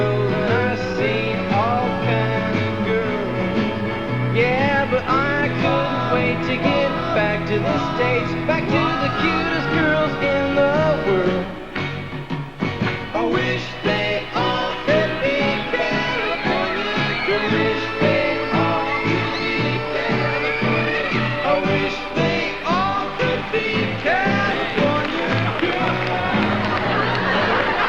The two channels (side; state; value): both; identical; correlation 1.00